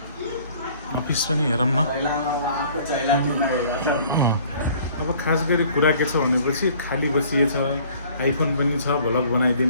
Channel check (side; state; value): both; inverted; correlation -0.54